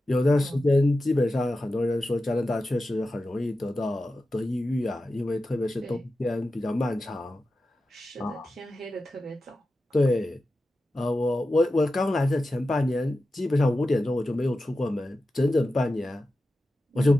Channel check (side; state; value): both; normal; correlation 0.92